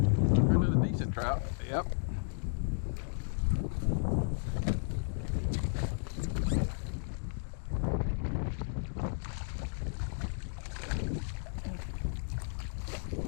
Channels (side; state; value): right; silent; digital silence